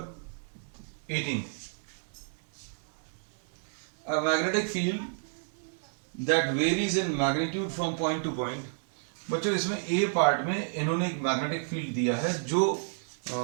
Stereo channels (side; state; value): left; silent; 57 dB below the other